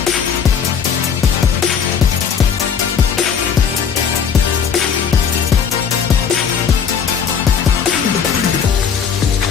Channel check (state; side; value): quieter; right; 7.0 dB